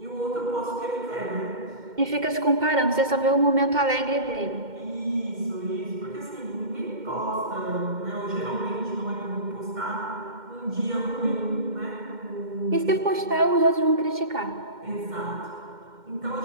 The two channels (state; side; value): late; left; 2.1 ms